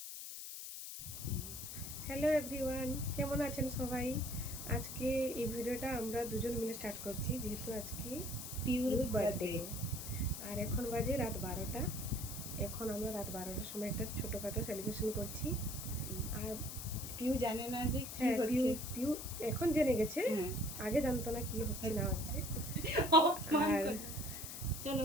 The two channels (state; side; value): noise; left; hiss, 8 dB below the sound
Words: হ্যালো এভরিওয়ান, কেমন আছেন সবাই? আজকে এই ভিডিওটা আমরা দুজন মিলে স্টার্ট করছি, যেহেতু আজকে পিওর বার্থডে। আর এখন বাজে রাত 12টা। এখন আমরা রাত 12টার সময় একটা ছোটোখাটো সেলিব্রেশন করছি। আর পিউ জানে না যে কি হ্যাঁ, পিউ হচ্ছে। পিউ এখন জেনে গেছে, হ্যাঁ। আগে জানতো না কি হচ্ছে না হচ্ছে। আর চলো